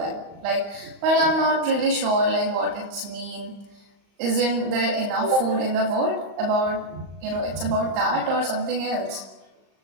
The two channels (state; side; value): late; left; 35 ms